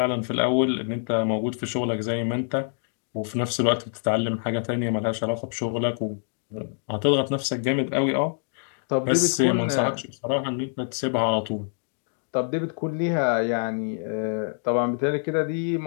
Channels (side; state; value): right; silent; digital silence